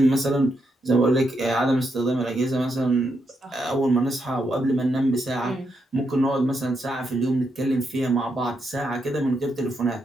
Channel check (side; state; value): both; normal; correlation 0.81